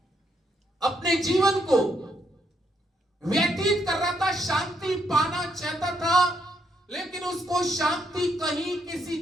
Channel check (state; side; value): normal; both; correlation 0.76